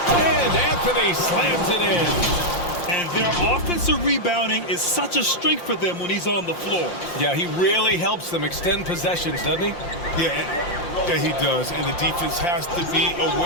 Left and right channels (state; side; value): late; right; 5.7 ms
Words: And Anthony slams it in. And their offensive rebounding is such a strength for them when he's on the floor. Yeah, he really helps them extend possessions, doesn't he? Yeah, he does. And the defense has to be